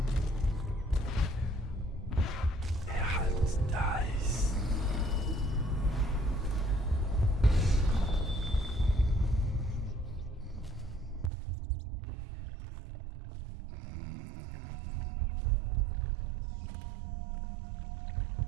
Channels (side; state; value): left; drops out; at 11.3 s